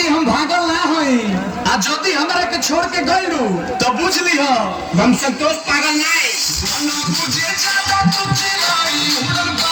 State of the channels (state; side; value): identical; both; correlation 1.00